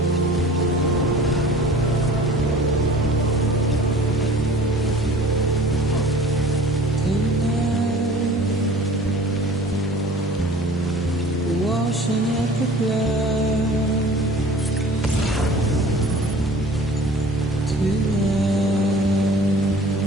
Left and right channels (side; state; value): both; normal; correlation 0.46